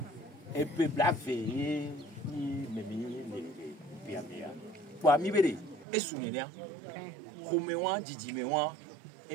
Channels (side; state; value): left; drops out; at 5.9 s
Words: e pe blave ni memi le piamea pour mi bere e sunenia khomewa jijimewa